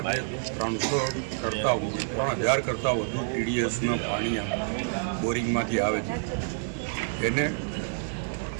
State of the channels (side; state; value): left; silent; 59 dB below the other